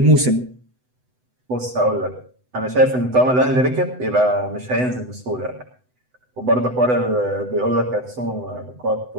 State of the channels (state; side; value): late; left; 8.0 ms